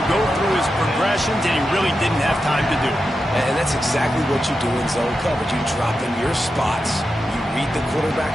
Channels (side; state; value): both; normal; correlation 0.89